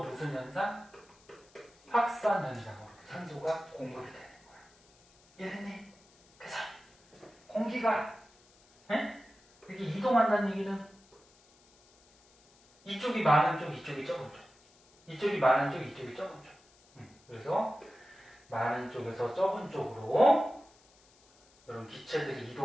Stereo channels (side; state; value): left; noise; hiss, 29 dB below the sound